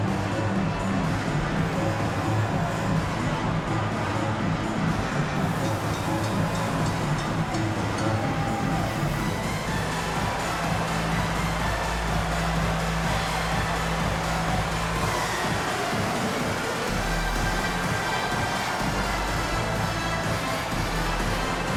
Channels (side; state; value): both; identical; correlation 1.00